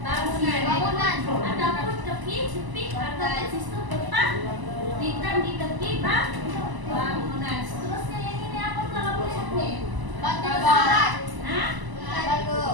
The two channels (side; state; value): left; late; 1.0 ms